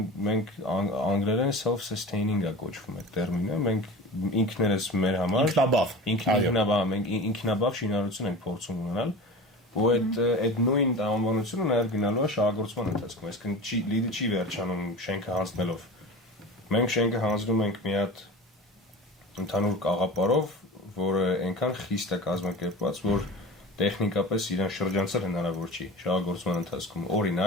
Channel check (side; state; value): both; normal; correlation 0.34